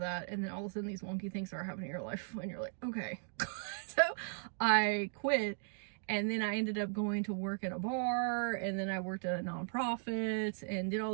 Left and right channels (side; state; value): left; silent; 53 dB below the other